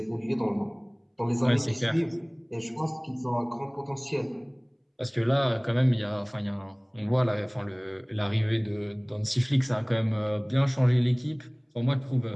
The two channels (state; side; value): identical; both; correlation 1.00